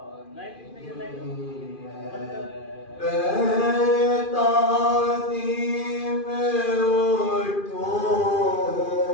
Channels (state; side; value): late; right; 2.4 ms